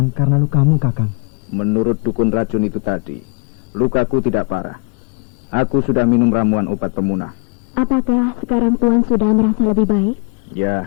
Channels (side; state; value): right; quieter; 33.7 dB